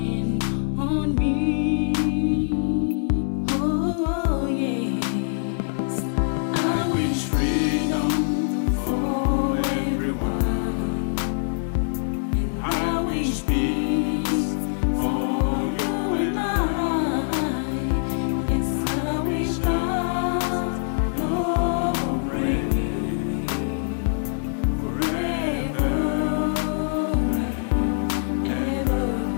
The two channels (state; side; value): silent; right; 63 dB below the other